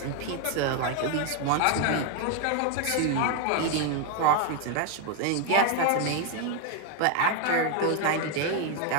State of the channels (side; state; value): both; different; correlation 0.01